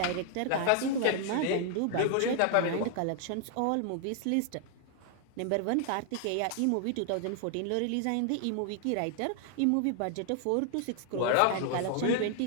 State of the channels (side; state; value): both; different; correlation 0.00